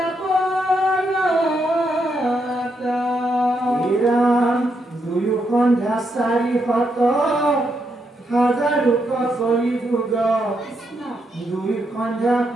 দুয়ো সন্ধ্যা 400 হাজাৰোক চলি যুগ দুই সন্ধ্যা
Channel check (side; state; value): both; normal; correlation 0.80